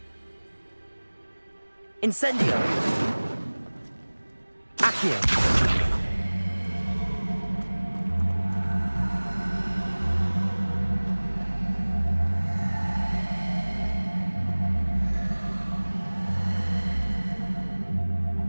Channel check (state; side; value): inverted; both; correlation -1.00